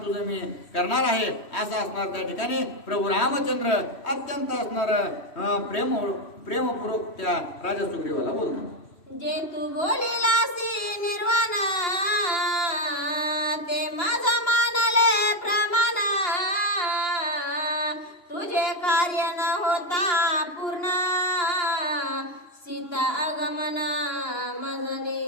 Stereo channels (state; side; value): late; right; 2.9 ms